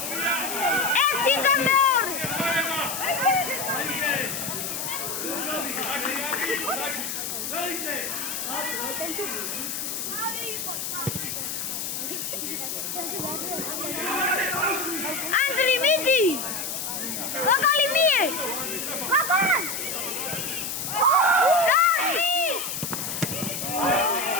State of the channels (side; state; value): left; noise; hiss, 4 dB below the sound